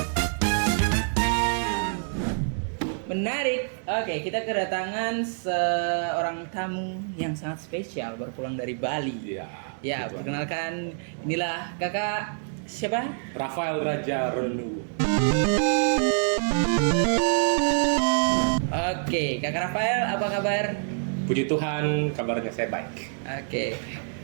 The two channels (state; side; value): silent; left; 61 dB below the other